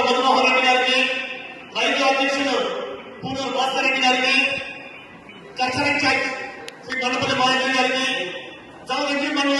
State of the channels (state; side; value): identical; both; correlation 1.00